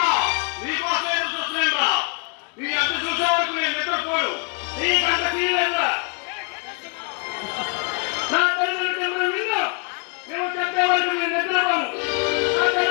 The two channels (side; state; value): right; quieter; 33.9 dB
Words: నీకోసం చూస్తున్నా నీ అంత చూసే వరకు నేను నిద్రపోడు. నీకంత తీయలేదా? నా తల్లిదండ్రులు చెప్పిన విన్ను నువ్వు చెప్పే వరకు నేను నిద్రపోను. నా